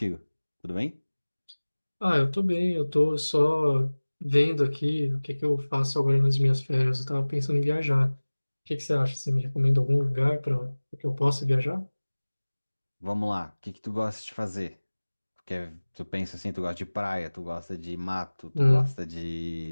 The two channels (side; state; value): both; inverted; correlation -1.00